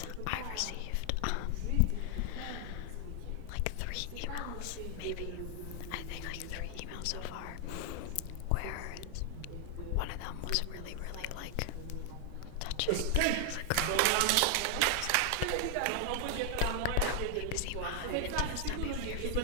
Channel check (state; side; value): different; both; correlation 0.00